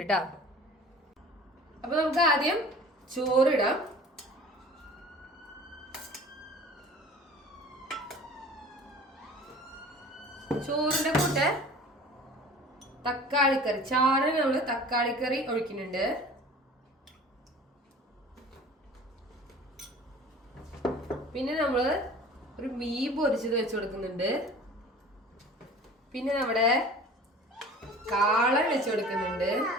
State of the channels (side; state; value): both; normal; correlation 0.43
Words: കേട്ടോ. അപ്പൊ നമുക്ക് ആദ്യം ചോറിടാം. ചോറിന്റെ കൂടെ തക്കാളിക്കറി, ചാറിന് നമ്മള് തക്കാളിക്കറി ഒഴിക്കുന്നുണ്ട്. പിന്നെ നമ്മള് ഒരു മീൻ പൊരിച്ചത് വെച്ച് കൊടുക്കുന്നുണ്ട്. പിന്നെ നമ്മുടെ കാളൻ വെച്ച് കൊടുക്കുന്നുണ്ട്,